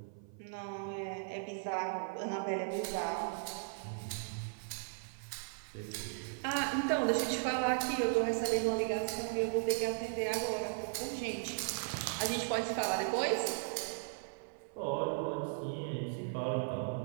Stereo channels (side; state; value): left; silent; 53 dB below the other